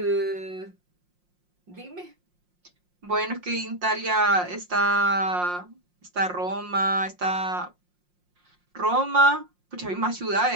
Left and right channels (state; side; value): late; left; 5.6 ms